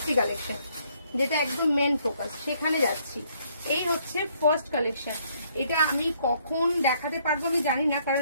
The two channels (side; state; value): both; inverted; correlation -0.68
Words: কালেকশন, যেটা একদম মেন ফোকাস, সেখানে যাচ্ছি। এই হচ্ছে ফার্স্ট কালেকশন। এটা আমি কখন দেখাতে পারবো আমি জানি না, কারণ